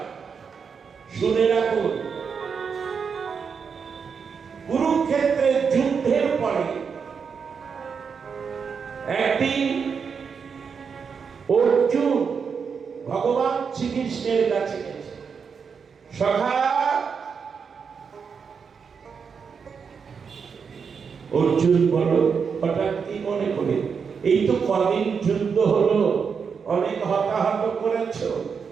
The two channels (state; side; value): quieter; left; 6.1 dB